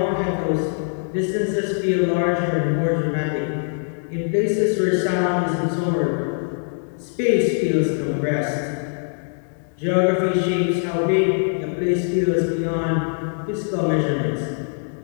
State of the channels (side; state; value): right; silent; digital silence